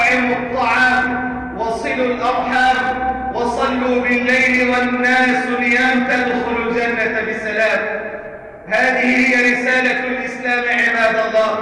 الطعام وصلوا الأرحام وصلوا بالليل والناس نيام تدخلوا الجنة بسلام. هذه هي رسالة الإسلام عباد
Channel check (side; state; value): both; identical; correlation 1.00